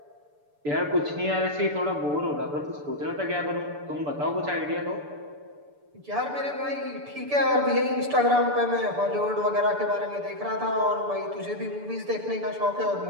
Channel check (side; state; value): left; late; 6.9 ms